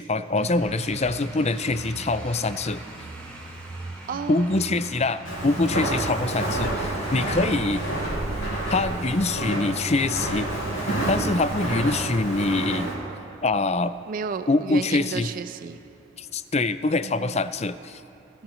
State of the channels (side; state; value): both; normal; correlation 0.45